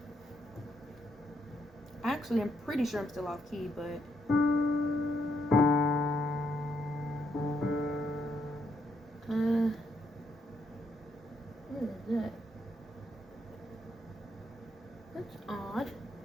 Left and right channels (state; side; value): normal; both; correlation 0.76